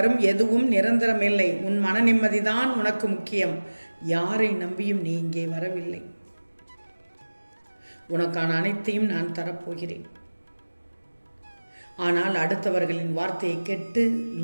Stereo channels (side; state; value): both; inverted; correlation -1.00